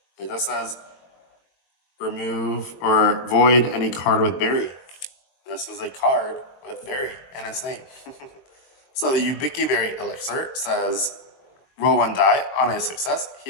It just says remove or void any card with berry. This is a card with berry in its name. So the Ubiki Berry Elixir says roll 1 die. On a success,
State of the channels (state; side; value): late; right; 21 ms